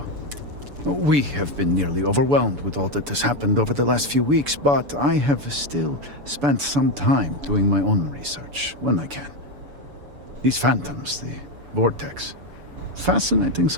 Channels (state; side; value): late; left; 7.0 ms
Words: We have been nearly overwhelmed with all that has happened over the last few weeks, but I have still spent some time doing my own research when I can. These phantoms, the vortex. Fascinating